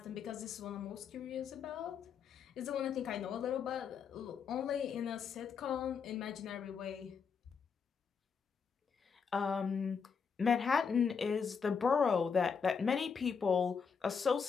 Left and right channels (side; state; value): right; quieter; 6.2 dB